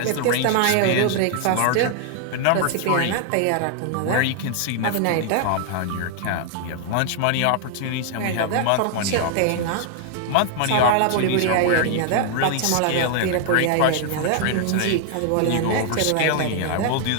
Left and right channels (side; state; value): both; different; correlation 0.00